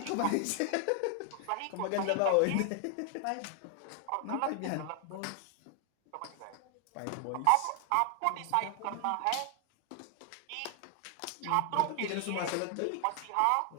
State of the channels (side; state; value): both; different; correlation 0.00